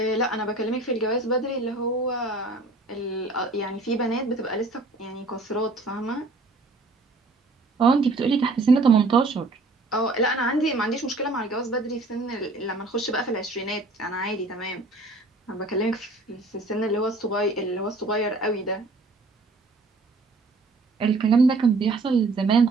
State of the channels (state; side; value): quieter; left; 3.2 dB